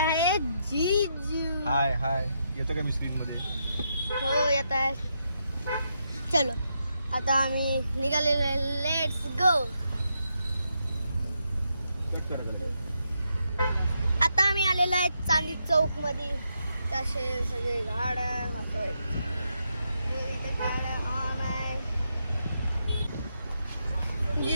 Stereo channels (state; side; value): inverted; both; correlation -0.82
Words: जीजू. हाय हाय. येतं का मी स्क्रीन मध्ये? हो येत आहे. चलो आता आम्ही निघालेलो आहे. Let's go. आता आम्ही आलेलो आहे चांदी चौक मध्ये. तसे सगळे गाड्या होतोय. इथे गाड्या ऑन आहे.